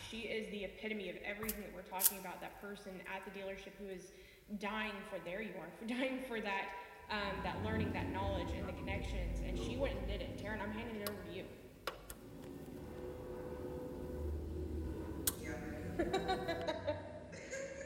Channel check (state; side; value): identical; both; correlation 1.00